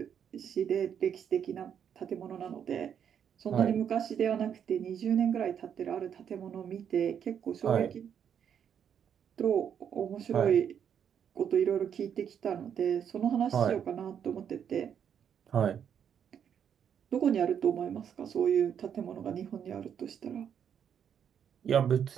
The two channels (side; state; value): left; quieter; 8.3 dB